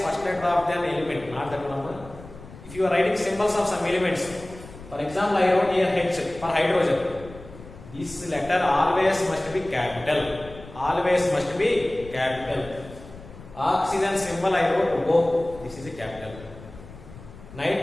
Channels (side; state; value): left; noise; rumble, 17 dB below the sound